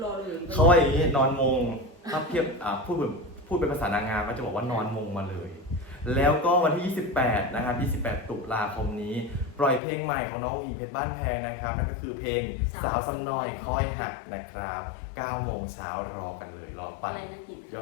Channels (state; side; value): drops out; right; at 9.8 s